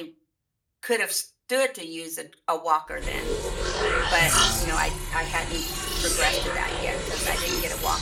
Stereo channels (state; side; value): identical; both; correlation 1.00